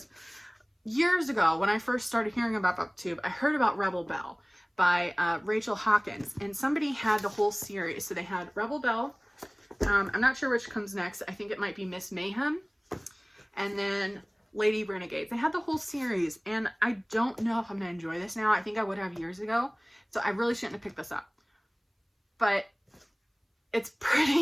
Years ago, when I first started hearing about BookTube, I heard about Rebel Belle by Rachel Hawkins, and somebody had the whole series. So they had Rebel Belle. I'm not sure which comes next. I think it might be Miss Mayhem, and then Lady Renegades. They had the whole series, and I don't know if I'm going to enjoy this now. I think I would have years ago, so I really shouldn't have picked this up. But it's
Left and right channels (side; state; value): both; identical; correlation 1.00